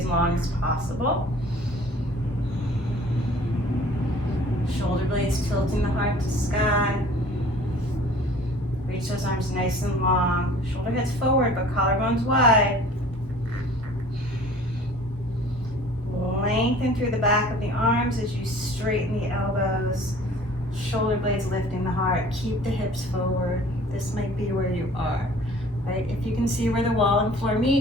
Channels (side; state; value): both; normal; correlation 0.49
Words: long as possible. Shoulder blades tilting the heart to sky. Reach those arms nice and long. Shoulder heads forward, but collarbones wide. Lengthen through the back of the arms as you straighten the elbows. Shoulder blades lifting the heart. Keep the hips forward. This might be where you are, right? If you can see where the wall and floor